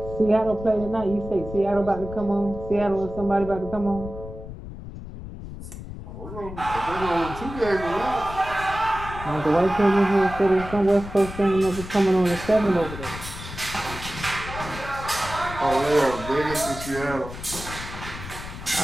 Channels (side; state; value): left; noise; rumble, 11 dB below the sound